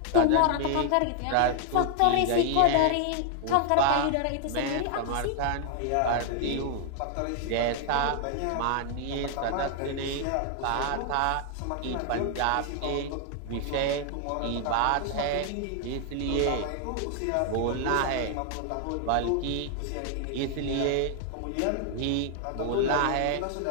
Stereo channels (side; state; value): both; different; correlation 0.00